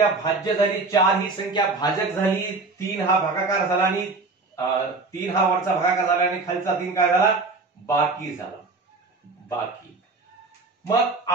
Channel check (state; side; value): quieter; left; 3.7 dB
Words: भाज्य झाली, 4 ही संख्या भाजक झाली, 3 हा भागाकार झाला आणि 3 हा वरचा भागाकार झाला आणि खालचा 3 काय झाला, बाकी झाला, बाकी. मग